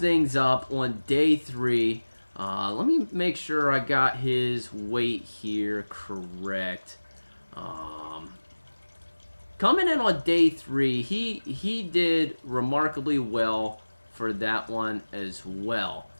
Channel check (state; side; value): inverted; both; correlation -1.00